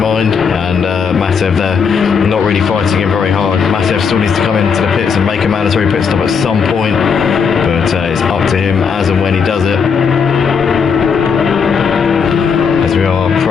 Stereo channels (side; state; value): right; quieter; 6.1 dB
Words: mind. And Matev there, not really fighting him very hard. Matev still needs to come into the pits and make a mandatory pit stop at some point, but it's up to him as and when he does it. As we are